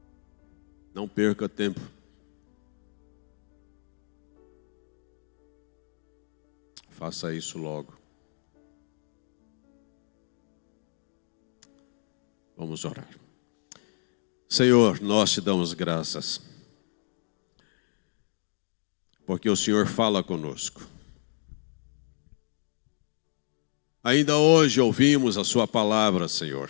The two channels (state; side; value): silent; right; digital silence